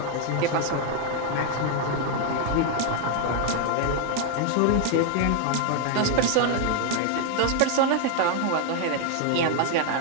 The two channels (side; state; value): both; different; correlation 0.00